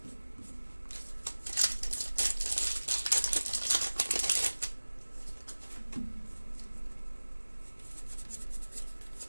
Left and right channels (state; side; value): inverted; both; correlation -1.00